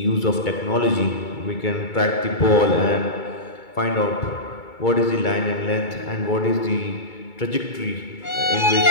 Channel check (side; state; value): right; late; 2.3 ms